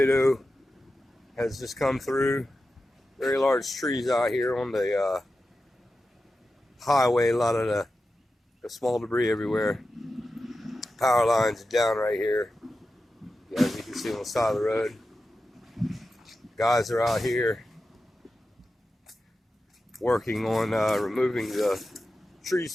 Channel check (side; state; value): both; normal; correlation 0.92